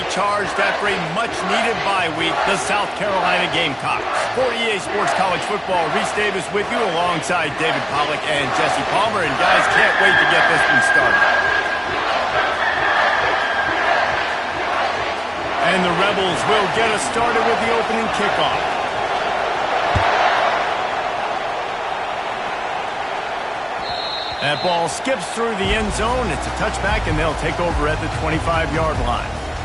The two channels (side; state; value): both; identical; correlation 1.00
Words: after a much-needed bye week, the South Carolina Gamecocks. For EA Sports College Football, Reese Davis with you alongside David Pollack and Jesse Palmer. And guys, can't wait to get this one started. And the Rebels will get us started with the opening kickoff. That ball skips through the end zone. It's a touchback, and they'll take over at the 25-yard line.